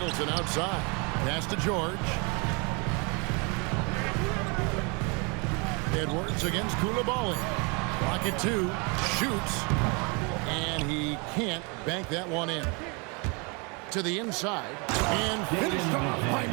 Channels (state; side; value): quieter; left; 31.7 dB